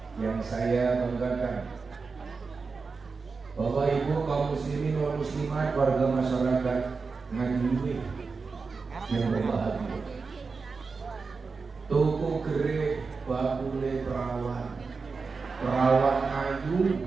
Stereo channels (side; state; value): left; quieter; 4.6 dB